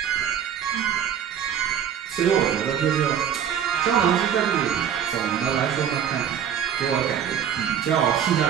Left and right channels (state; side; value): quieter; left; 8.8 dB